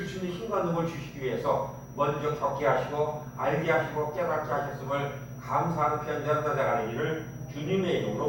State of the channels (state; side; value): identical; both; correlation 1.00